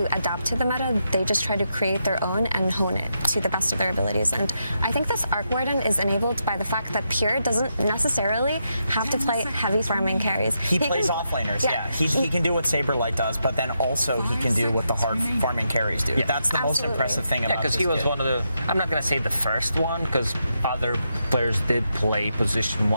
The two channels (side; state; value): both; inverted; correlation -0.83